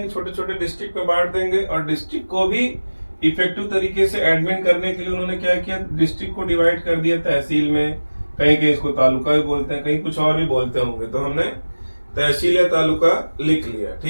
छोटे छोटे डिस्ट्रिक्ट में बांट देंगे, और डिस्ट्रिक्ट को भी इफेक्टिव तरीके से एडमिन करने के लिए उन्होंने क्या किया, डिस्ट्रिक्ट को डिवाइड कर दिया तहसील में। कहीं कहीं इसको तालुका भी बोलते हैं, कहीं कुछ और भी बोलते होंगे, तो हमने तहसील या तालुका लिख लिया।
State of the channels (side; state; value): both; inverted; correlation -1.00